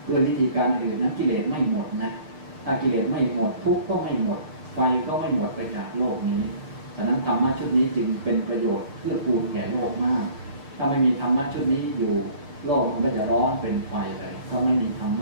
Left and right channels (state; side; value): late; left; 6.8 ms